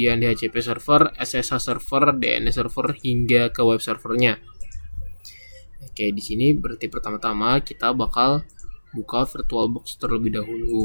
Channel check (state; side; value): inverted; both; correlation -1.00